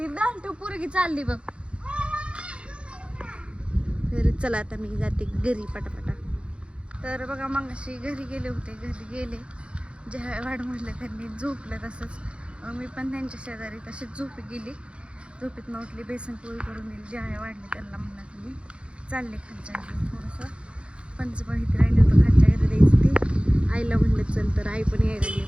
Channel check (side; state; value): left; late; 0.058 ms